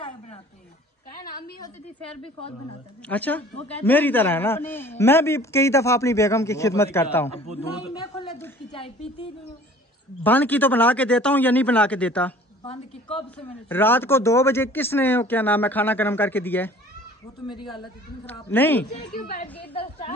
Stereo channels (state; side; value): normal; both; correlation 0.49